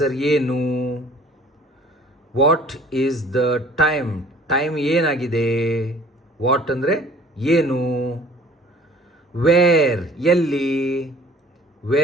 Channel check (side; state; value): both; normal; correlation 0.51